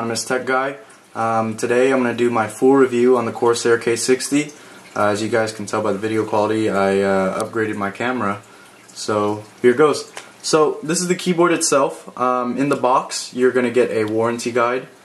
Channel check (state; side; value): identical; both; correlation 1.00